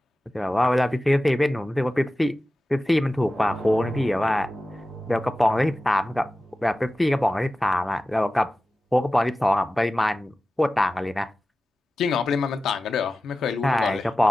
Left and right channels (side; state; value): both; normal; correlation 0.95